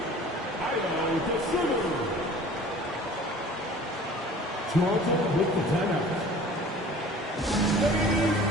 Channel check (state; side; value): normal; both; correlation 0.46